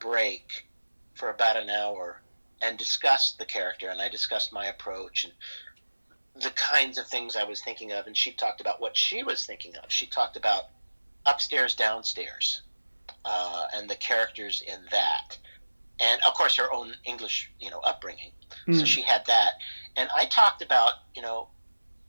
for about an hour and discussed the character, and I discussed my approach and the kinds of things I was thinking of, and she talked about what she was thinking of. She talked about upstairs, downstairs, and the characters in that, and of course her own English, upbringing. So mm. she had that, and I talked about,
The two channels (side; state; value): both; inverted; correlation -1.00